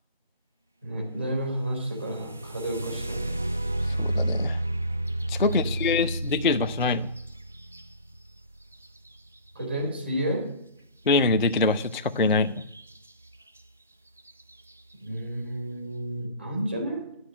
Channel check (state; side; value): inverted; both; correlation -0.43